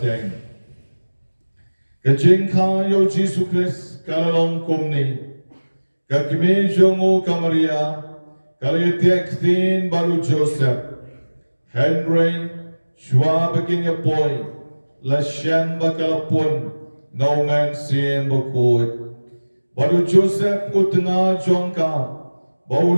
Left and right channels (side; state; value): both; inverted; correlation -1.00